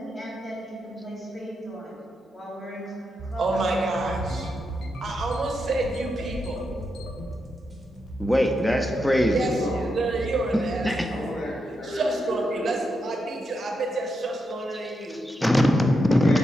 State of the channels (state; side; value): normal; both; correlation 0.84